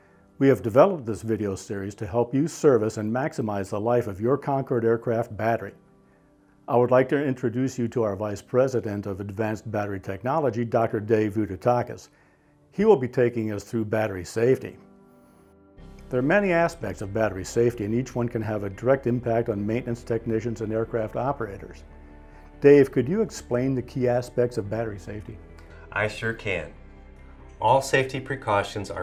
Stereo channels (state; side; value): identical; both; correlation 1.00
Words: We have developed this video series to help you service and maximize the life of your Concorde aircraft battery. I would like to introduce you to our Vice President of Advanced Battery Technology, Dr. Dave Vudatakis. He will be taking us through battery safety. There are many aspects of battery safety, and each one can have a direct impact on maintenance technicians and aircraft operators. Dave, could you explain the key aspects of battery safety? I sure can. All safety precautions